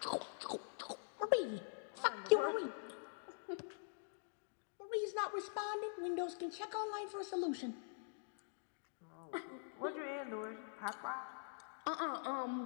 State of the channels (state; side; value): silent; right; digital silence